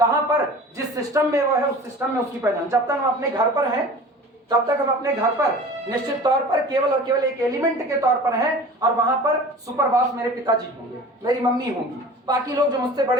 पर, जिस सिस्टम में वो है उस सिस्टम में उसकी पहचान। जब तक हम अपने घर पर हैं, तब तक हम अपने घर पर निश्चित तौर पर केवल और केवल एक एलिमेंट के तौर पर हैं, और वहां पर सुपर बॉस मेरे पिताजी होंगे, मेरी मम्मी होंगी, बाकी लोग जो मुझसे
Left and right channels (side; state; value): both; normal; correlation 0.40